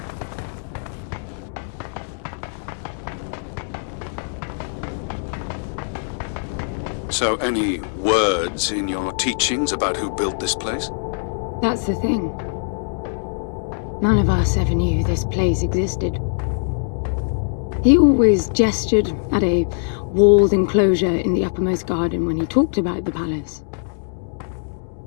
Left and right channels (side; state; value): right; silent; 64 dB below the other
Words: So any words in your teachings about who built this place? That's the thing. None of us ever knew this place existed. He always gestured at a walled enclosure in the uppermost garden when he talked about the palace.